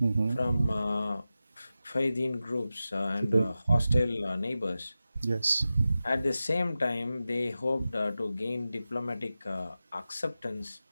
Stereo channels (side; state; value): both; inverted; correlation -0.93